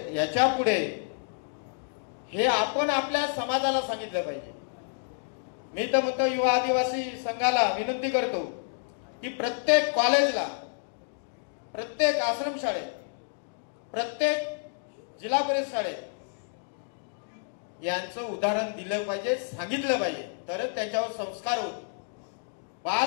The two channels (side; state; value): right; silent; digital silence